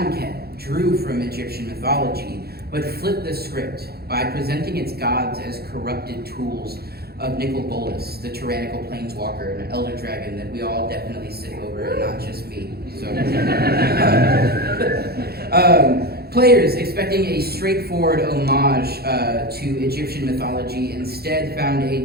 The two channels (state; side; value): late; left; 0.46 ms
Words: drew from Egyptian mythology, but flipped the script by presenting its gods as corrupted tools of Nicol Bolas, the tyrannical planeswalker and elder dragon that we all definitely sit over, and not just me. So, players expecting a straightforward homage to Egyptian mythology instead found